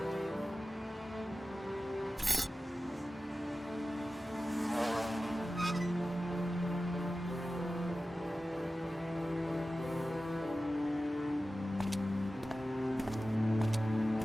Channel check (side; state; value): both; normal; correlation 0.95